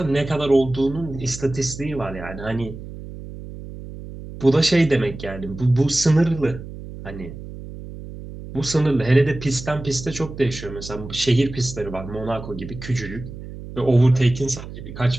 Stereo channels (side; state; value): right; noise; hum, 12 dB below the sound